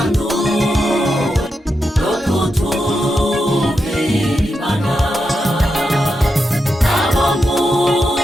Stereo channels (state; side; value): normal; both; correlation 0.86